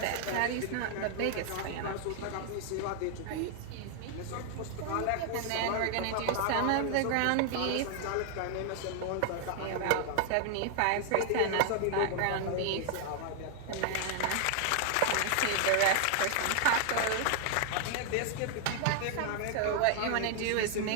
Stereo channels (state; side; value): different; both; correlation 0.00